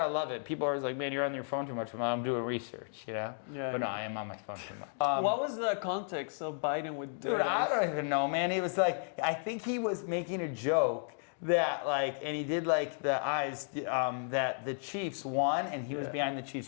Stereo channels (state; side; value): silent; right; digital silence